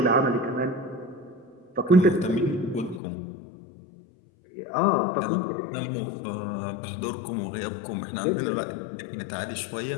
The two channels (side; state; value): right; drops out; at 3.0 s